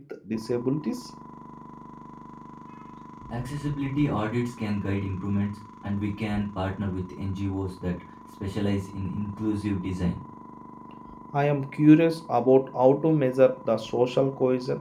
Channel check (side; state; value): both; identical; correlation 1.00